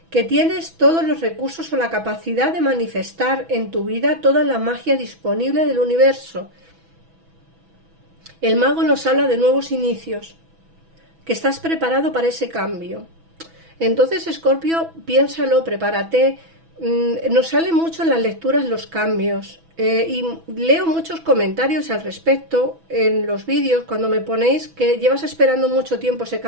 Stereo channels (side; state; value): left; late; 6.1 ms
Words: que tienes todos los recursos o la capacidad de manifestar en tu vida toda la magia disponible del universo. El mago nos habla de nuevos inicios, que estás preparado para ese cambio. Entonces, Escorpio, piénsalo, prepárate. Nos salen mucho en las lecturas los cambios y leo muchos comentarios al respecto en los vídeos cuando me ponéis que llevas esperando mucho tiempo ese